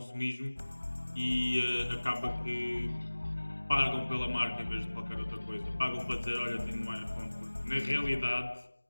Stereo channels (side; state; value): both; inverted; correlation -1.00